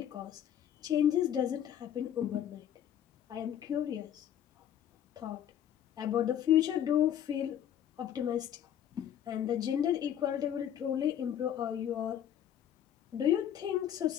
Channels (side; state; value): right; quieter; 10.1 dB